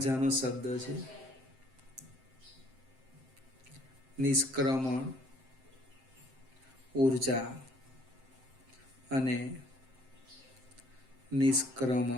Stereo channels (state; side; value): late; left; 7.7 ms